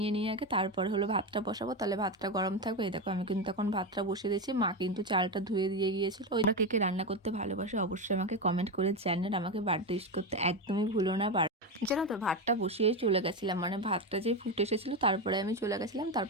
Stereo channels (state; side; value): normal; both; correlation 0.14